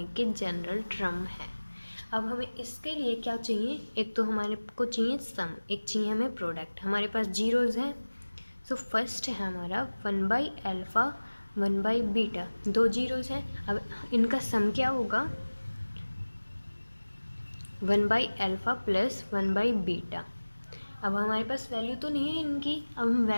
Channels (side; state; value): both; inverted; correlation -1.00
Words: के जनरल टर्म है। अब हमें इसके लिए क्या चाहिए? एक तो हमारे को चाहिए सम, एक चाहिए हमें प्रोडक्ट। हमारे पास जीरोज़ हैं। सो फर्स्ट है हमारा 1 बाई अल्फ़ा 1 बाई बीटा, दो जीरोज़ हैं। अब इनका सम क्या होगा? 1 by alpha plus 1 by beta. अब हमारे पास वैल्यू तो नहीं है इनकी, अब हम